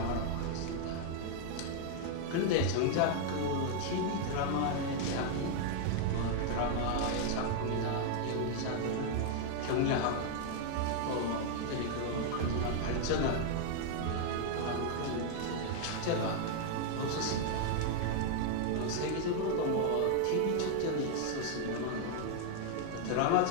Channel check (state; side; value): different; both; correlation 0.00